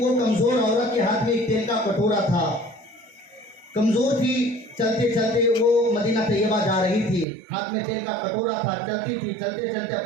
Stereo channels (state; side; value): drops out; left; at 7.2 s